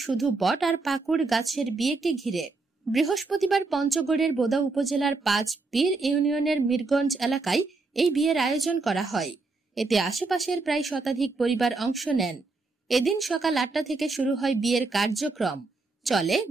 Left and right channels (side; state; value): left; quieter; 3.7 dB